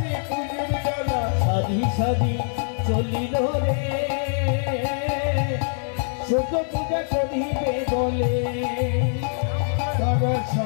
নিয়ে পূজার ডালা সাধি সাধি চলিল রে ছোট পূজা করিবে বলে বাবা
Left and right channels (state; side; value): silent; right; digital silence